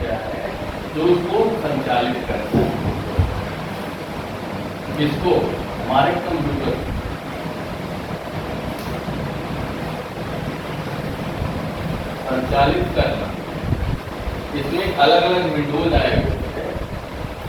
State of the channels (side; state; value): both; identical; correlation 1.00